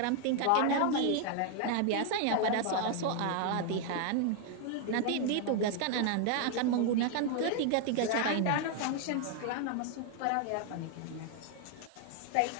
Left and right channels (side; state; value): both; different; correlation 0.00